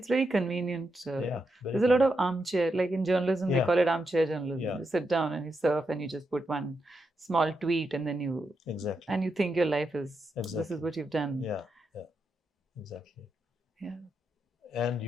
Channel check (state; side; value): normal; both; correlation 0.84